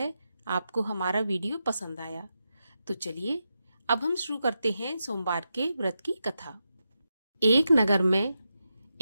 आपको हमारा वीडियो पसंद आया। तो चलिए अब हम शुरू करते हैं सोमवार के व्रत की कथा। एक नगर में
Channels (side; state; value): both; inverted; correlation -0.87